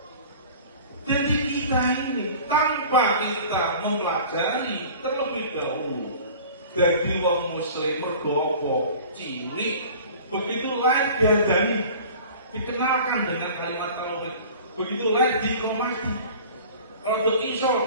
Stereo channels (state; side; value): inverted; both; correlation -0.43